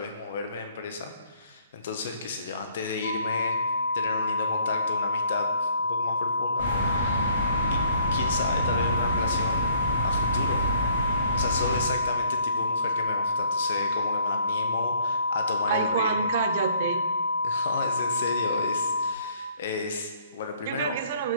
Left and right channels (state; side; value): inverted; both; correlation -0.61